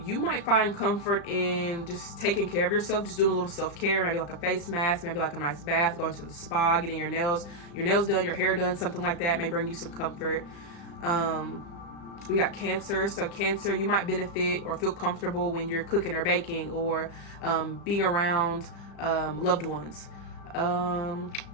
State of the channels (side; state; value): right; late; 35 ms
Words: you might find comfort in just taking care of yourself, just doing a little self-care, maybe like a face mask, maybe like a nice bath, going to the spa, getting your nails done, your hair done, something like that may bring you some comfort. We got Cancer. So Cancer, you might benefit or feel comfortable when you're cooking or baking, or being around loved ones. Let